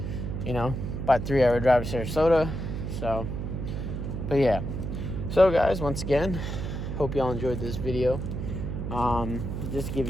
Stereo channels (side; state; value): right; noise; hum, 4 dB below the sound